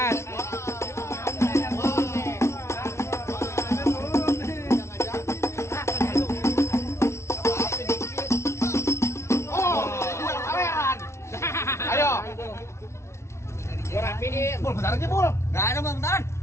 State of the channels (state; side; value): late; right; 0.13 ms